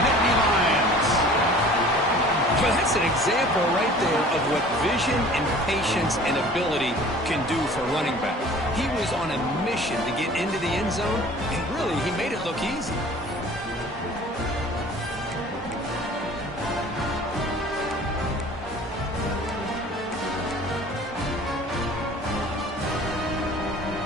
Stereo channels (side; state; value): both; normal; correlation 0.47